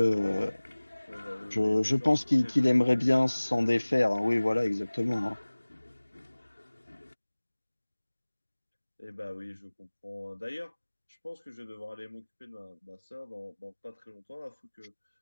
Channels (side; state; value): both; inverted; correlation -1.00